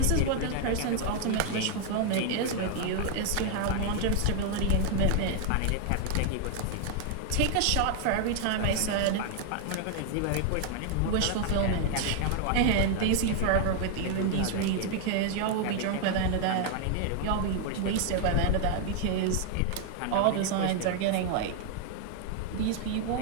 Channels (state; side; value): different; both; correlation 0.00